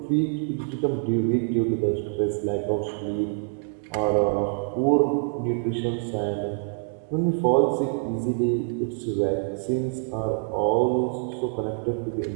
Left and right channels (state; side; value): silent; left; 61 dB below the other